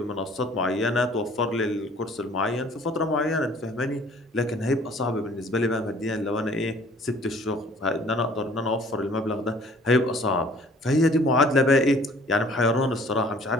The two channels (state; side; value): normal; both; correlation 0.54